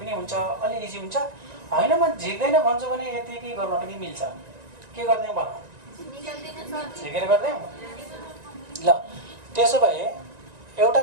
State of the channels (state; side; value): late; left; 1.9 ms